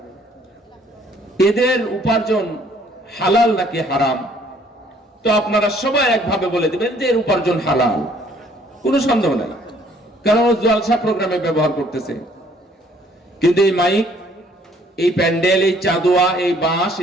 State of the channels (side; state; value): both; normal; correlation 0.61